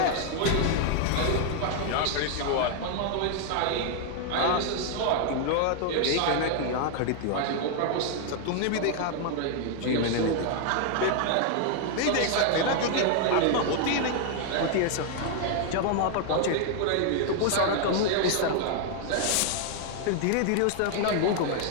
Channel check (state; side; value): different; both; correlation 0.00